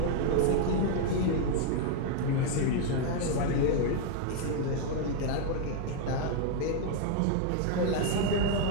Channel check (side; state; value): both; different; correlation 0.00